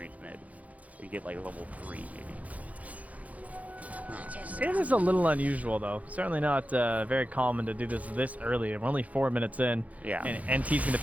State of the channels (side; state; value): left; late; 0.071 ms